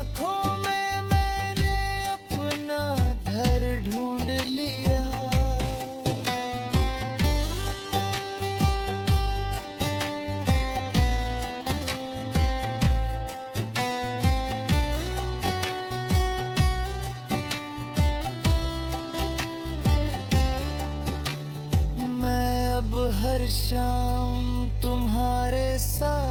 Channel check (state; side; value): identical; both; correlation 1.00